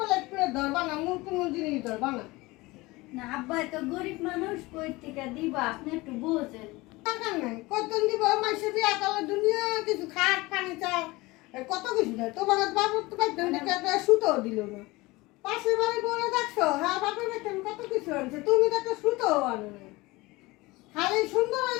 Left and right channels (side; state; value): right; quieter; 21.6 dB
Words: প্লেট ধরবা না, মুখ কোনো জিনিস ধরবা না। না আব্বাই তো গরিব মানুষ, কই থেকে দিবা? আপনি একটু বোঝেন। দরকার নাই, কতদিন দিব মাসে বিয়া করলে দুনিয়া কিছু খাট ফার্নিচার কত কিছু দেয়। তোমার বাবুর তো বাইতেন দেখে একটা সুতোও দিল না। পাশের বাড়ি বলে দেখছো, হ্যাঁ বাপের বাইতেন কত কিছু আনছে, তুমি তো একটা সুতোও আনো না। খালি সুন্দর